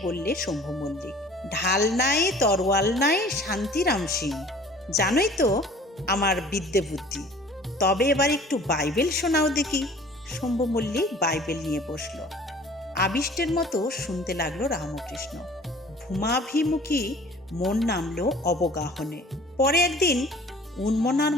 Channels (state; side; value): normal; both; correlation 0.49